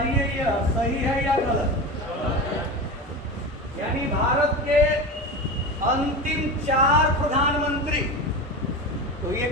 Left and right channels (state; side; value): normal; both; correlation 0.26